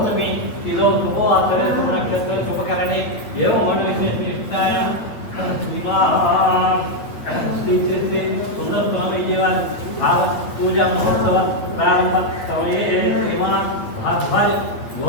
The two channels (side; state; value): right; late; 8.9 ms